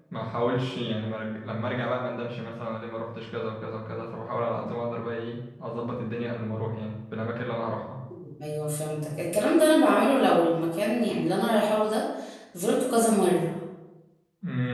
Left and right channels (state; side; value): identical; both; correlation 1.00